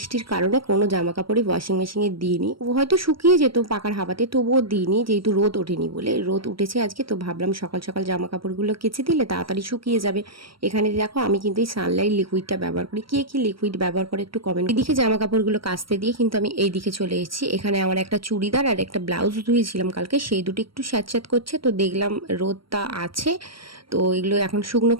কারণে কোনো জামা কাপড়ই ওয়াশিং মেশিনে দিইনি। ও হয়তো শুকিয়ে যেত পাকার হাওয়াতে, তবুও দিইনি, যেহেতু রোদ ওঠেনি বলে। রোদ উঠেছে আজকে, তো ভাবলাম সকাল সকাল জামা কাপড়গুলো কেচে দিলে তাড়াতাড়ি শুকিয়ে যাবে। এখানে দেখো আমি কিন্তু এই সানলাইট লিকুইডটা ব্যবহার করি। কে কি লিকুইড ব্যবহার করে একটু কমেন্ট। এদিকে জামা কাপড়গুলো কাচতে দিয়ে কিন্তু আমি এই দিকে চলে এসেছি। এখানে আমার একটা চুড়িদার আর একটা ব্লাউজ ধুয়েছিলাম কালকে, সেই দুটো একটু স্যাঁতস্যাঁত করছে। তো দেখলাম রোদটা আছে, তো এগুলো এখন শুকনো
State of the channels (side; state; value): left; late; 0.74 ms